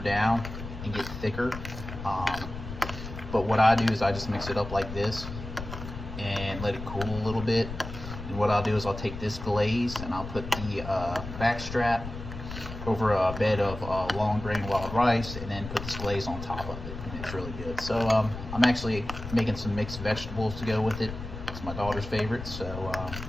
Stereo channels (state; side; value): noise; left; rumble, 9 dB below the sound